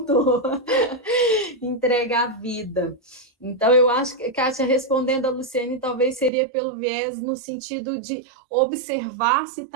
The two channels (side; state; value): left; drops out; at 6.3 s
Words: Entrega a vida. Então, eu acho que, Kátia, respondendo a Luciene, talvez seria pelo viés no sentido de observar se